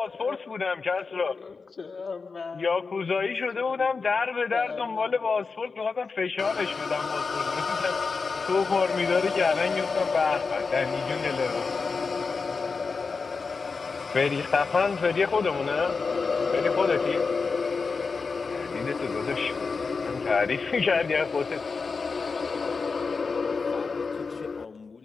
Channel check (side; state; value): right; quieter; 4.6 dB